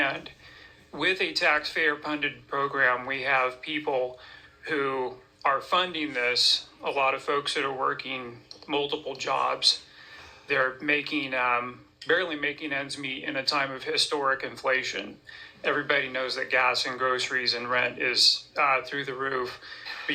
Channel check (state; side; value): identical; both; correlation 1.00